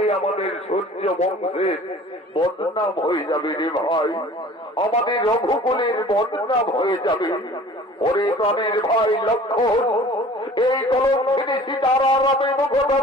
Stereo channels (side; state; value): both; normal; correlation 0.46